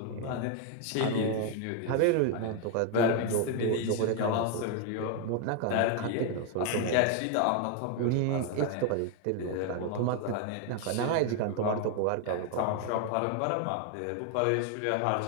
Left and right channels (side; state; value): both; different; correlation 0.00